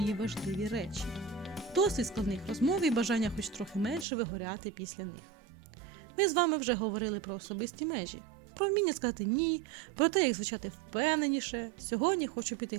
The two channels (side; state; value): left; drops out; at 4.0 s